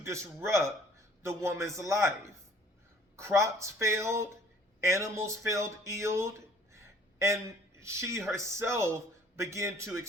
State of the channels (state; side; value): normal; both; correlation 0.55